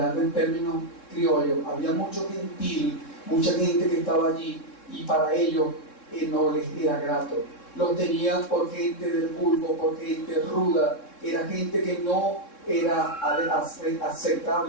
en términos criollos, había mucho gentil, mucha gente que estaba allí, y para ellos no les era grato. Los tenían por gente del vulgo, por gente ruda, era gente que no era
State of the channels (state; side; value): late; right; 3.6 ms